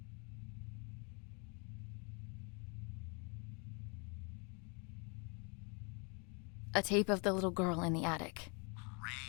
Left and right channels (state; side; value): quieter; right; 34.2 dB